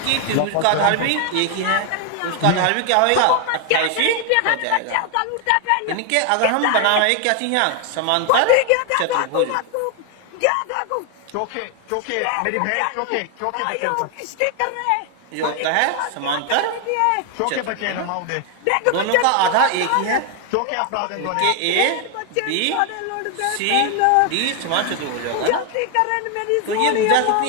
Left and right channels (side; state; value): both; different; correlation 0.00